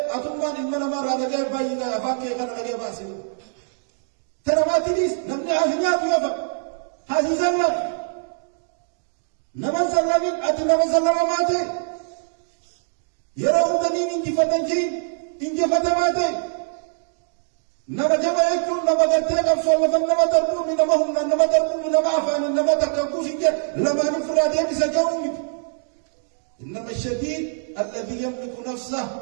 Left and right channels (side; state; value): left; silent; digital silence